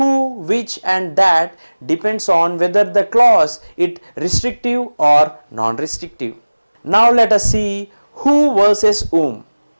which and that depends on whether the clause is restrictive or non-restrictive. Now let us see who versus whom.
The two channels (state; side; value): inverted; both; correlation -1.00